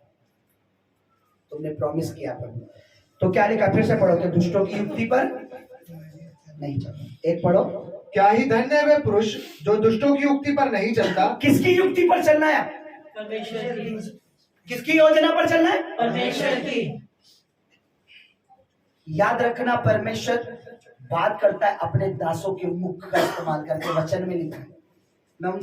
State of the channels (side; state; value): both; identical; correlation 1.00